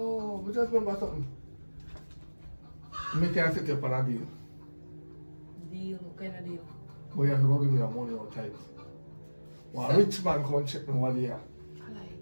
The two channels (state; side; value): inverted; both; correlation -1.00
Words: we just remember something. Me can set you up on a deal. Deal? What kind of deal? But you have to go give me your money outside. One rich man come check me one year.